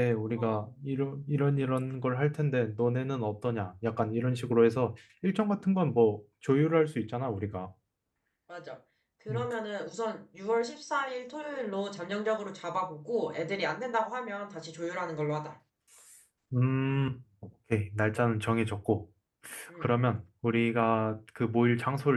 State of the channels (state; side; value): identical; both; correlation 1.00